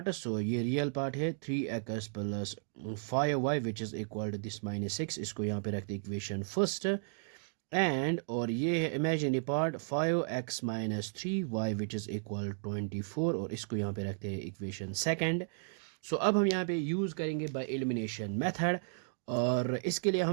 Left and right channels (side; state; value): left; silent; digital silence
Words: So ये रियल पार्ट है 3x plus 5y which is equal to this minus 6, इसको यहाँ पे रखते इक्वेशन फर्स्ट एंड, और ये है imaginary part 5x minus 3y which is equal 24 और इसको यहाँ पे रखते हैं इक्वेशन सेकंड। सो अब हम यहाँ पे यूज़ करेंगे बाय एलिमिनेशन मेथड और इसके लिए